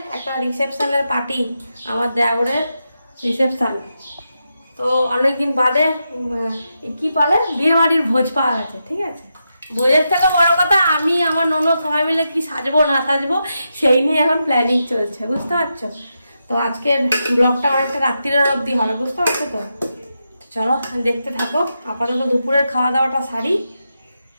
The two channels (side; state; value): both; inverted; correlation -0.86